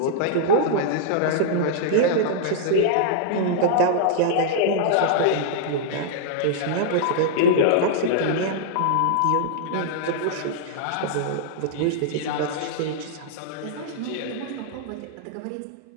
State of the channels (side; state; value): both; different; correlation -0.01